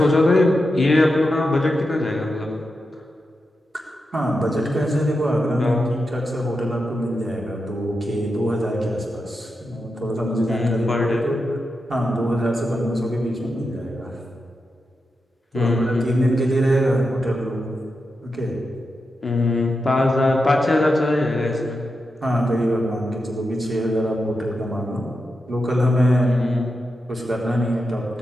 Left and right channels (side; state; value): both; normal; correlation 0.88